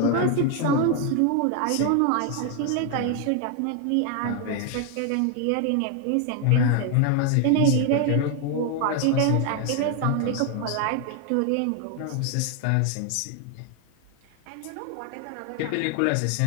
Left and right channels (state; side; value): different; both; correlation 0.01